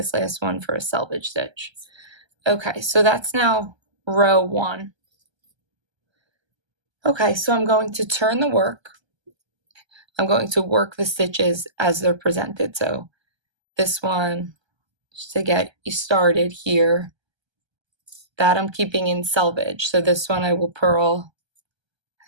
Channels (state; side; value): late; left; 1.3 ms